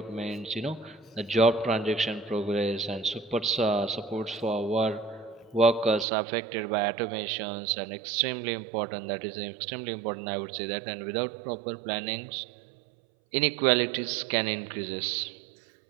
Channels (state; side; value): drops out; left; at 6.1 s